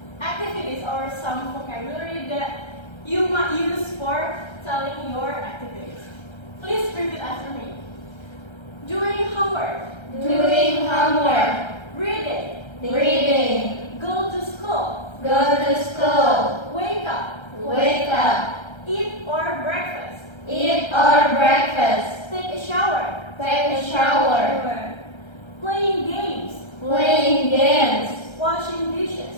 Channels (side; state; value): right; late; 1.3 ms